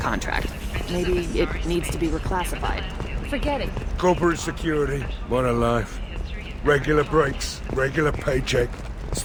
Maybe it needs to be reclassified. Forget it. Corporate security, what a life. Regular breaks, regular paycheck.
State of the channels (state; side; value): identical; both; correlation 1.00